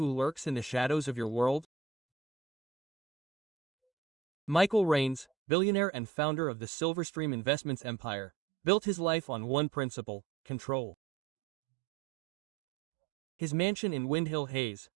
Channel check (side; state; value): left; drops out; at 5.2 s